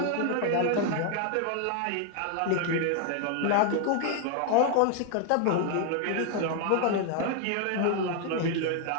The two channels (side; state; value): both; different; correlation 0.00